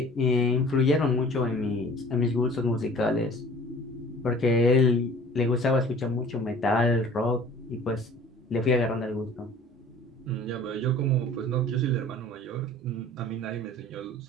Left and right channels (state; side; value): normal; both; correlation 0.47